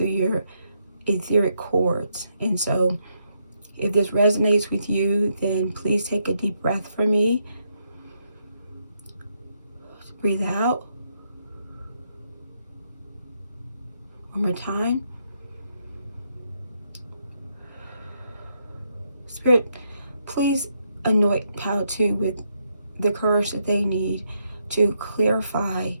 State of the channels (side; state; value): both; inverted; correlation -0.77